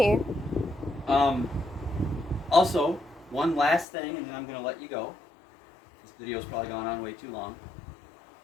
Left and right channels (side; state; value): right; drops out; at 3.9 s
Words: Also, one last thing, and then I'm going to let you go. This video's probably gone on way too long.